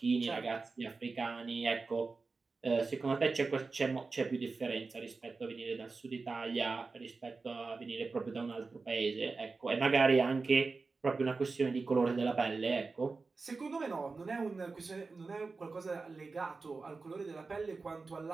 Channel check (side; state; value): left; quieter; 4.1 dB